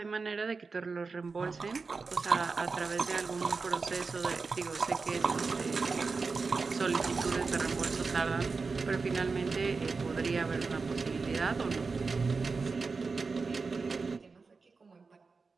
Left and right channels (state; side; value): quieter; left; 4.4 dB